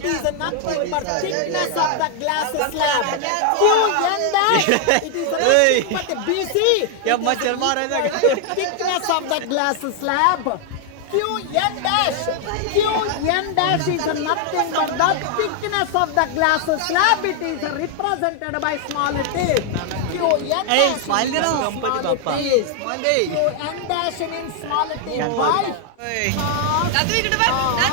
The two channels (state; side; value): different; both; correlation 0.00